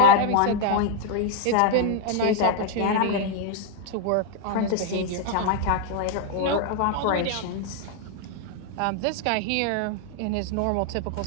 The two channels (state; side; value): different; both; correlation 0.00